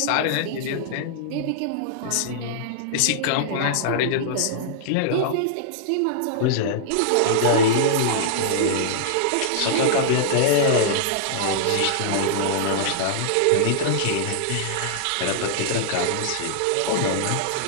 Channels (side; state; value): both; different; correlation -0.01